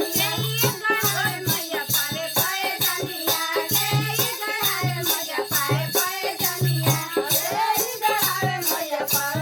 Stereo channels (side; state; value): both; identical; correlation 1.00